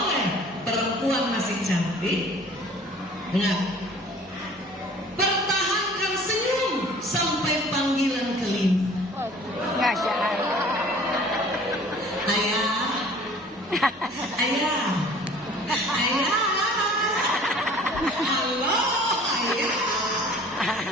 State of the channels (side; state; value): both; normal; correlation 0.50